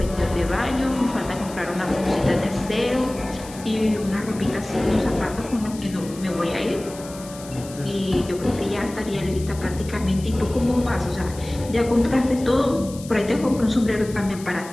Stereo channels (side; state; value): left; noise; hiss, 17 dB below the sound